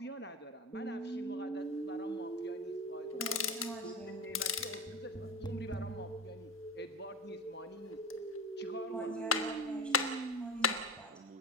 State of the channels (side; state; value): both; normal; correlation 0.26